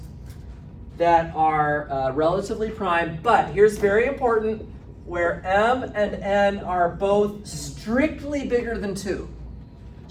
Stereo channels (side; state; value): both; identical; correlation 1.00